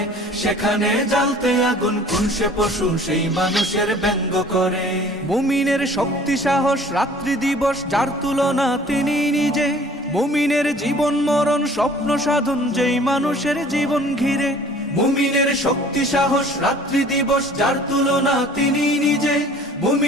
সেখানে জ্বালতে আগুন কোন সে পশু সেই মানুষের ব্যঙ্গ করে। মুমিনের শক্তি সাহস রাত্রি দিবস যার তুলনা তিনি নিজে, মুমিনের জীবন মরণ স্বপ্ন সাধন যেই মানুষের জীবন ঘিরে। মুমিনের শক্তি সাহস রাত্রি দিবস যার তুলনা তিনি নিজে,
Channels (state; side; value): normal; both; correlation 0.51